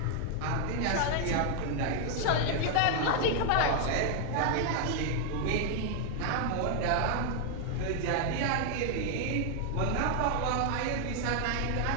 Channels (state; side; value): different; both; correlation 0.00